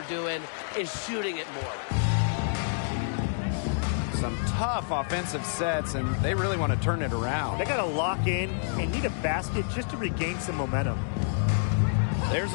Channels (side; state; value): right; silent; digital silence